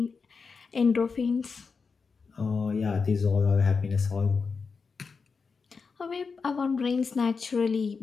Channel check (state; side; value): quieter; right; 5.0 dB